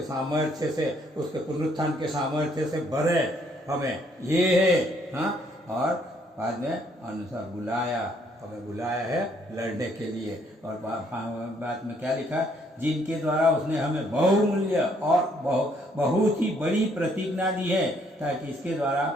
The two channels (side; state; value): both; normal; correlation 0.67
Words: सामर्थ्य से, उसके पुनरुत्थान के सामर्थ्य से भरे हमें। ये है। हाँ, और बाद में अनुसार बुलाया, हमें बुलाया है लड़ने के लिए। और बाद में क्या लिखा? जिनके द्वारा उसने हमें बहुमूल्य और बहुत ही बड़ी प्रतिज्ञा दी है, ताकि इसके द्वारा